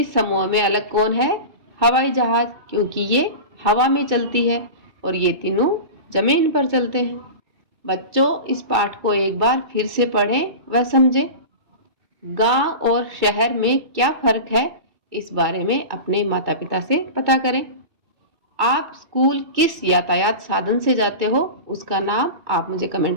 समूह में अलग कौन है? हवाई जहाज, क्योंकि ये हवा में चलती है और ये तीनों जमीन पर चलते हैं। बच्चों, इस पाठ को एक बार फिर से पढ़ें व समझें। गांव और शहर में क्या फर्क है, इस बारे में अपने माता पिता से पता करें। आप स्कूल किस यातायात साधन से जाते हो, उसका नाम आप मुझे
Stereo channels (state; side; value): late; left; 2.6 ms